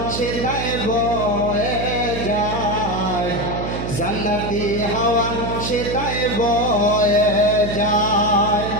সেটাই বয়ে যায় জান্নাতি হাওয়া সেটাই বয়ে যায়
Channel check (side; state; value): right; noise; hum, 5 dB below the sound